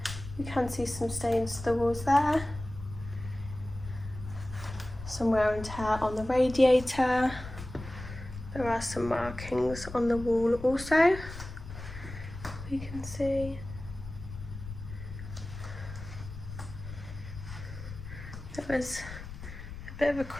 You can see some stains to the walls there. Some wear and tear on the radiator. There are some markings on the wall also. You can see. There was a bit of a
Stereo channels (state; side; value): noise; left; rumble, 11 dB below the sound